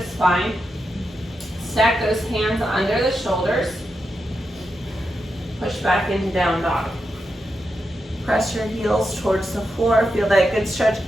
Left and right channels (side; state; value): both; normal; correlation 0.87